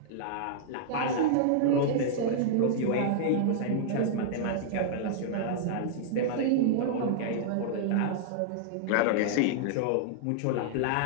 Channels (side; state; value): both; different; correlation -0.01